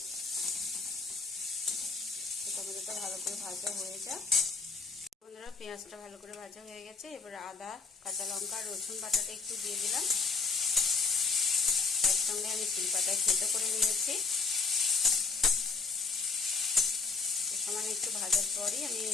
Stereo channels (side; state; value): right; quieter; 4.7 dB